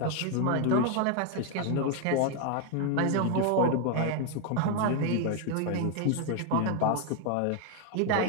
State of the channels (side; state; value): both; different; correlation 0.01